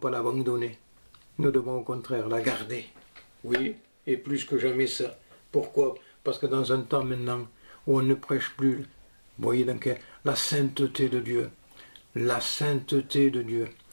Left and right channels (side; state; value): both; inverted; correlation -1.00